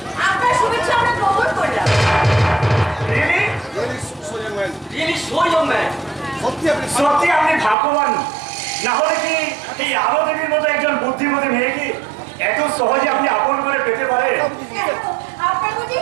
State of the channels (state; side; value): drops out; left; at 7.8 s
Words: আপনার শুভেচ্ছা আমরা গ্রহণ করলাম। সত্যি আপনি ভাগ্যবান, না হলে কি এই আলো দেবীর মতো একজন বুদ্ধিমতী মেয়েকে এত সহজে আপনি আপন করে পেতে পারেন? আপনার বুঝি